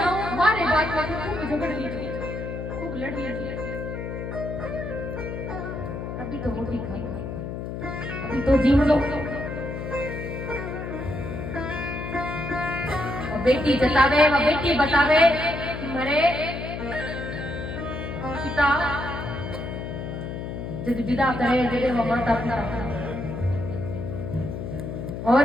हमारे बात में खूब झगड़ लीजिए, खूब लड़ लीजिए, अभी तो रोटी खा लो, अभी तो जीव लो। बेटी जतावे व बेटी बतावे कि मेरे पिता जब विदा करे जरे वो माता पिता। और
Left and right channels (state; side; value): noise; left; hum, 6 dB below the sound